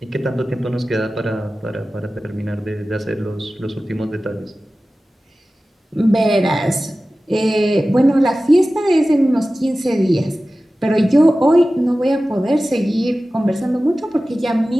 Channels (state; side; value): normal; both; correlation 0.96